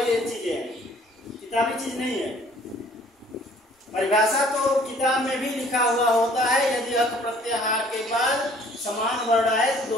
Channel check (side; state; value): both; normal; correlation 0.56